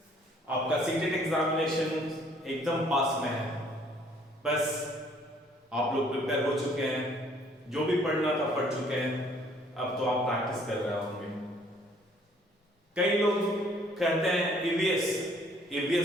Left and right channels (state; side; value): normal; both; correlation 0.61